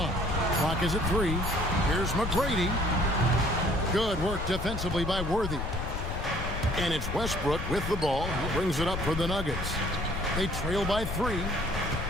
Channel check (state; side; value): noise; left; rumble, 4 dB below the sound